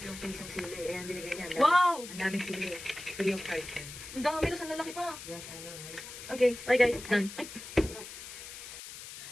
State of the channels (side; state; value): left; noise; hiss, 12 dB below the sound